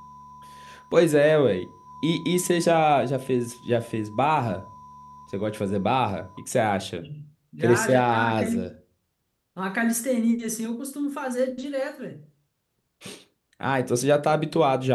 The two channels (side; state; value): both; identical; correlation 1.00